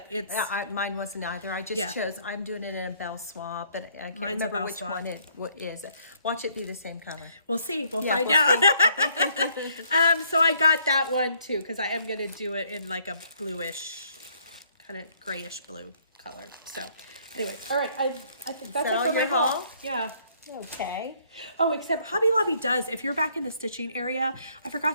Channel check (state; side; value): inverted; both; correlation -0.65